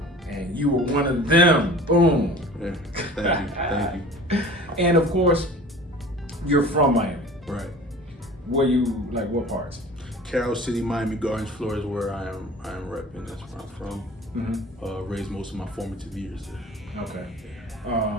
And you were one of them. Boom. Yeah. Thank you. And of course, you're from Miami. Right. Where you, like, what parts? Carroll City, Miami Gardens, Florida is where I am repping. That's where I'm from. Mm-hmm. Raised most of my formative years there. Okay.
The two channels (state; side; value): normal; both; correlation 0.42